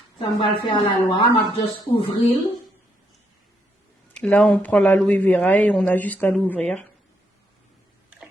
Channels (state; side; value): normal; both; correlation 0.76